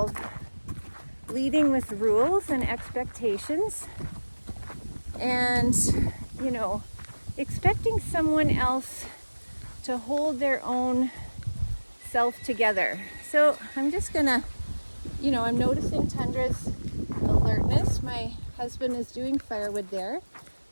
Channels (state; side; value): inverted; both; correlation -1.00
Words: leading with rules and expectations, and expecting someone else to hold their own self together. So I'm just gonna, I'm noticing Tundra's alertness. My husband is doing firewood there,